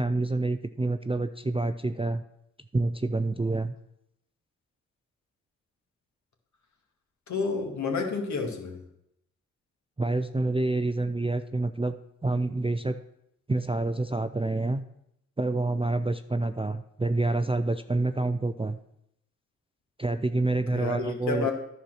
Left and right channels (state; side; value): normal; both; correlation 0.83